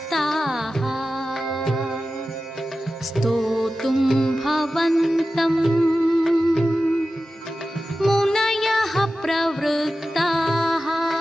स्तोतुं भवन्तं मुनयः प्रवृत्ताः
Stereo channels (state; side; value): normal; both; correlation 0.94